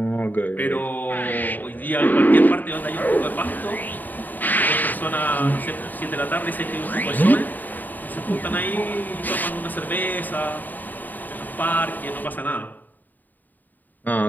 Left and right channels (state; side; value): late; right; 0.086 ms